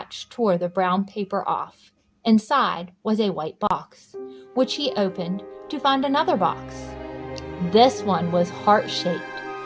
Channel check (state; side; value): identical; both; correlation 1.00